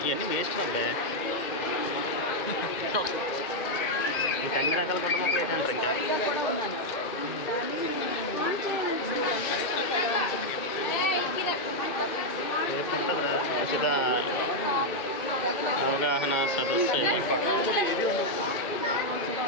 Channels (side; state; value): right; late; 2.1 ms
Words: ఇవన్నీ వేస్ట్ అబ్బాయి. ఇంకా అన్ని రకాల కుటుంబ మొక్కలు ఏంటంటారు ఇంకా రేపు ఉంటుందిరా ఉచిత అవగాహన సదస్సు.